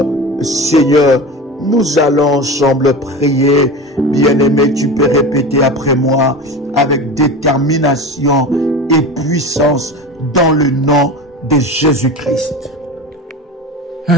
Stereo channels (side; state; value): both; normal; correlation 0.29